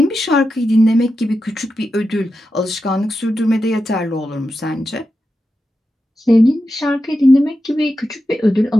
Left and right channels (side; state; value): both; normal; correlation 0.89